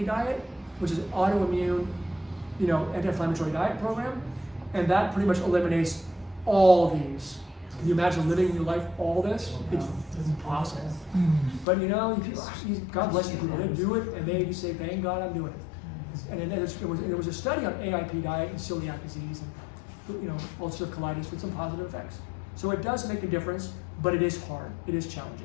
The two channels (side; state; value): right; drops out; at 11.7 s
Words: diet, which is autoimmune, anti-inflammatory diet program, and that pretty much eliminates all these. Can you imagine living your life all this? It's impossible. But God bless you people. They do it, and they say, "Thank God I'm doing it." And there was a study on AIP diet and celiac disease and ulcerative colitis with some positive effects. So it does make a difference, but it is hard. It is